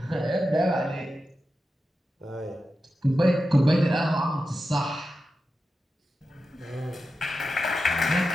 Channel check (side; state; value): both; normal; correlation 0.91